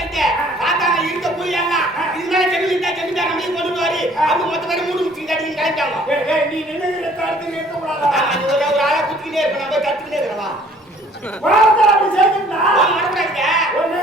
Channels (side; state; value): both; normal; correlation 0.56